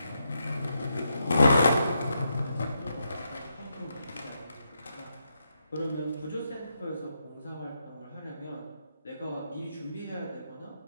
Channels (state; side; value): inverted; both; correlation -0.82